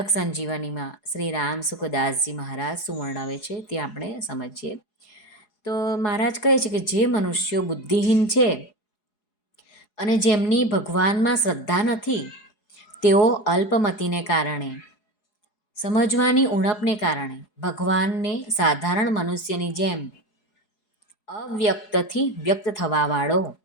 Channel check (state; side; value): late; right; 4.8 ms